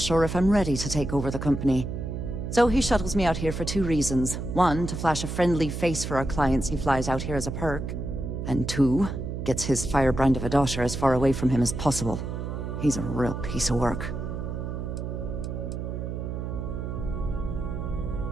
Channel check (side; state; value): right; noise; hum, 5 dB below the sound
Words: if I'm ready to take over the company. So he shuttles me out here for two reasons. One, to flash a friendly face for our clients he flies out here as a perk. And two, gets his firebrand of a daughter as far away from him as possible. He's a real piece of work.